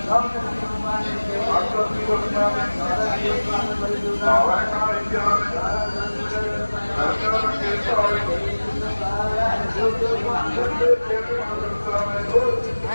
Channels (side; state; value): both; inverted; correlation -1.00